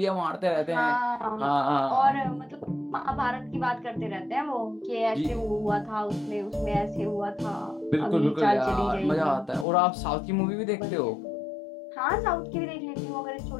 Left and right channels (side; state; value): right; drops out; at 9.7 s